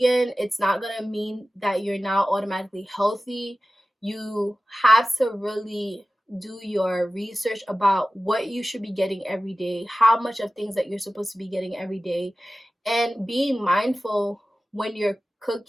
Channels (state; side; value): normal; both; correlation 0.95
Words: it's not gonna mean that you're now automatically healthy. You have to really do your research about what you should be getting every day, how much of things that you're supposed to be getting every day, and being mindful when you're